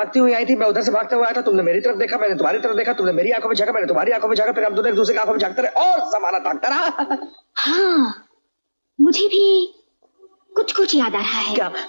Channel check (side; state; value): both; inverted; correlation -1.00